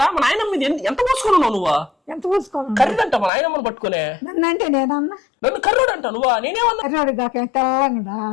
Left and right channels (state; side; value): drops out; right; at 3.3 s